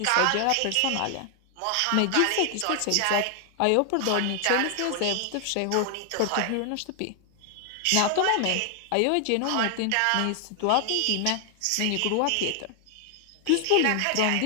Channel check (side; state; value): both; different; correlation 0.00